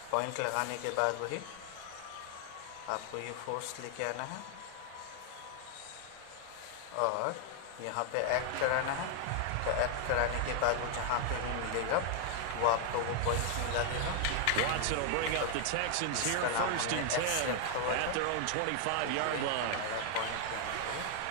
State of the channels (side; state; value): both; different; correlation 0.00